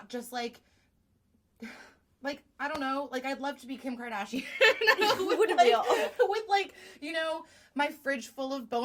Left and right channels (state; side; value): identical; both; correlation 1.00